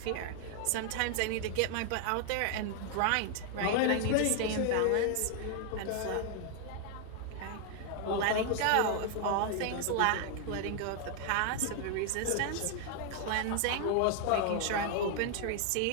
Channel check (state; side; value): different; both; correlation 0.00